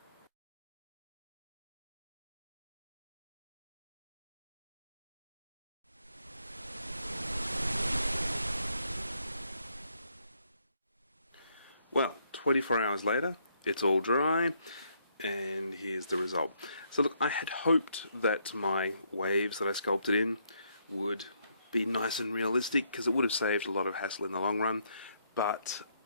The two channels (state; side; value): inverted; both; correlation -0.73